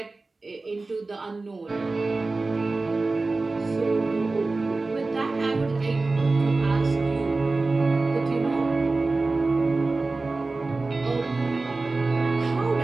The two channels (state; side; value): quieter; left; 3.5 dB